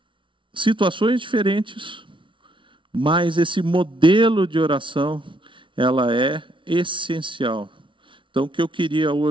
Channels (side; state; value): left; late; 0.25 ms